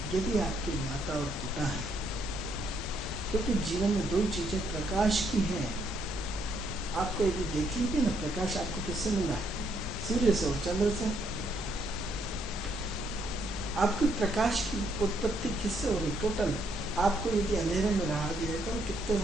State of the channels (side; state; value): both; normal; correlation 0.72